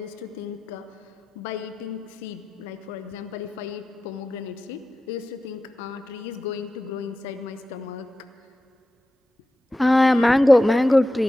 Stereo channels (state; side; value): normal; both; correlation 0.93